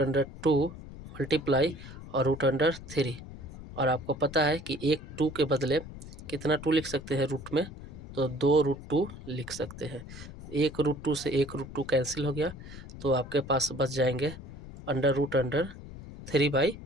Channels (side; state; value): left; noise; rumble, 14 dB below the sound